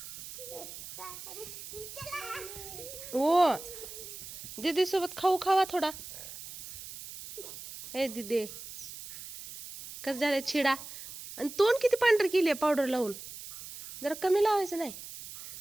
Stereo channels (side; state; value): right; noise; hiss, 12 dB below the sound